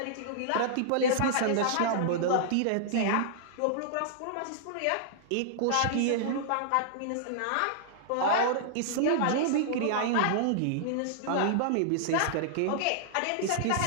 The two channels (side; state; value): both; different; correlation -0.01